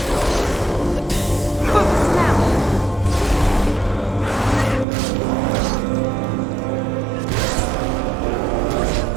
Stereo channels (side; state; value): left; drops out; at 4.9 s